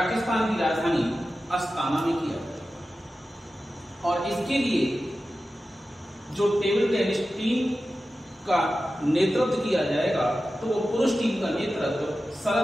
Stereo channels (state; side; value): normal; both; correlation 0.93